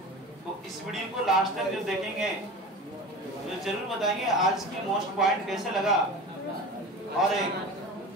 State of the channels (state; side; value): normal; both; correlation 0.33